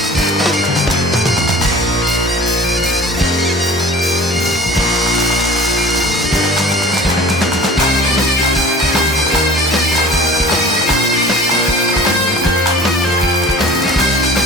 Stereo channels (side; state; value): both; normal; correlation 0.44